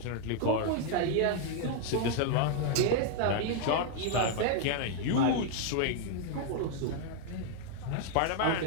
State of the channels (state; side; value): different; both; correlation 0.00